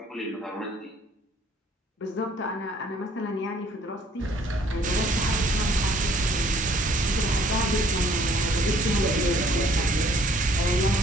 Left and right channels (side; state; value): both; normal; correlation 0.60